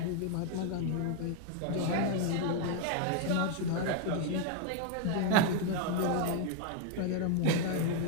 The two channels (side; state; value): both; different; correlation 0.01